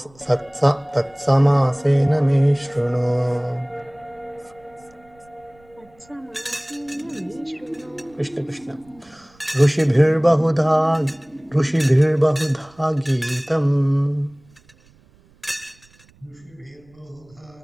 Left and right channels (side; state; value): right; noise; rumble, 30 dB below the sound